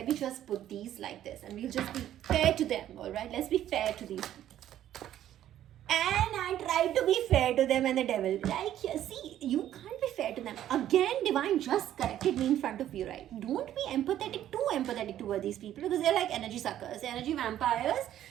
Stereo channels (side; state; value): left; quieter; 11.8 dB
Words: just put these like this and we'll just be fair to them, alright? Let's be fair to these people. And I tried to be fair to them and the devil. Like, see, you can't be fair to them. Again, divine just corrected me in front of you, right? Don't be too empathetic toward these people because they're like energy suckers, energy vampires.